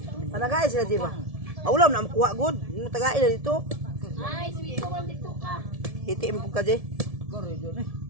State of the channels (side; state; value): left; late; 1.7 ms